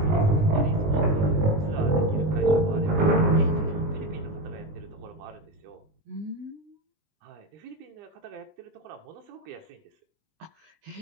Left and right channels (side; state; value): left; late; 20 ms